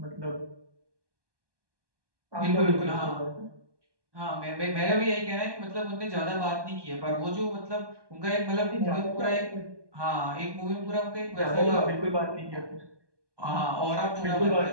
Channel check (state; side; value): late; left; 1.2 ms